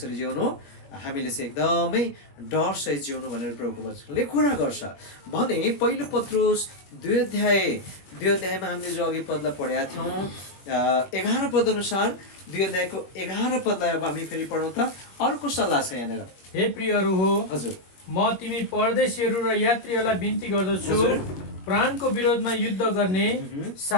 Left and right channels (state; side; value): late; right; 21 ms